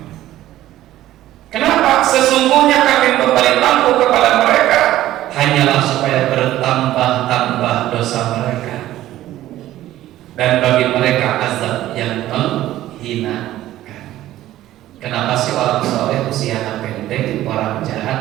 Kenapa? Sesungguhnya kami memberi tangguh kepada mereka hanyalah supaya bertambah-tambah dosa mereka dan bagi mereka azab yang menghinakan. Kenapa sih orang soleh usianya pendek, orang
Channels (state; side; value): quieter; left; 14.2 dB